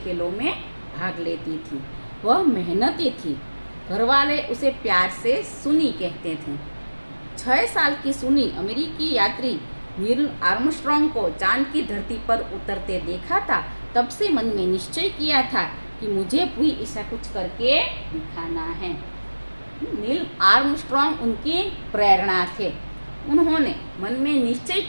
खेलों में भाग लेती थी। वह मेहनती थी। घरवाले उसे प्यार से सुनी कहते थे। 6 साल की सुनी अमेरिकी यात्री नील आर्मस्ट्रॉन्ग को चांद की धरती पर उतरते देखा था। तब से मन में निश्चय किया था कि मुझे भी ऐसा कुछ करके दिखाना है। नील आर्मस्ट्रॉन्ग उनकी प्रेरणा थे। उन्होंने मन में निश्चय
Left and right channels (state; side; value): inverted; both; correlation -1.00